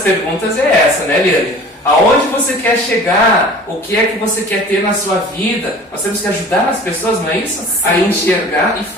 é essa, né, Liane? Aonde você quer chegar? O que é que você quer ter na sua vida? Nós temos que ajudar as pessoas, não é isso? Sim. A enxergar e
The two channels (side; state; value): both; normal; correlation 0.44